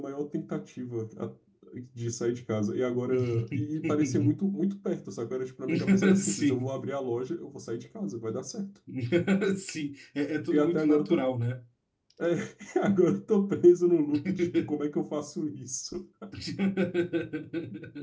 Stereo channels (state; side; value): identical; both; correlation 1.00